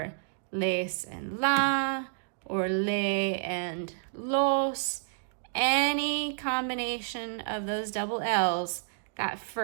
les and la, or le and los. Any combination of those double L's, that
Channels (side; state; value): left; silent; digital silence